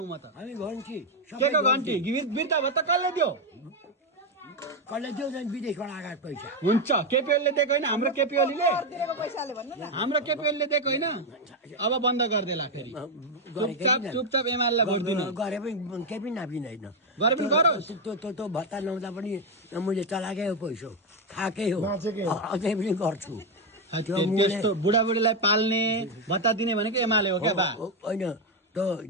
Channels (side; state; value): both; normal; correlation 0.05